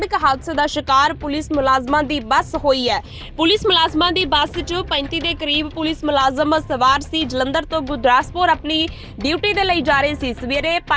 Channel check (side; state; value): both; identical; correlation 1.00